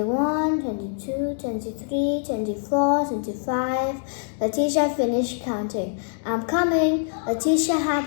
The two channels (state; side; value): silent; right; digital silence